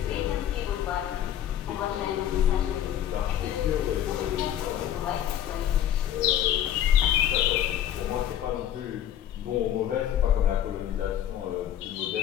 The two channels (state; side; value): quieter; right; 10.9 dB